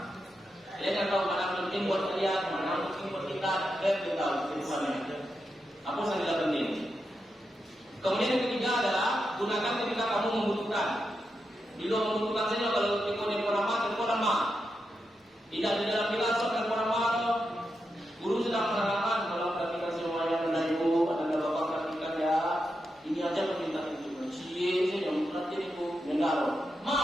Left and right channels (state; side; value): normal; both; correlation 0.87